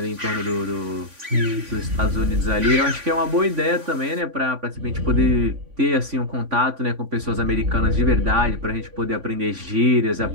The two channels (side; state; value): left; late; 3.5 ms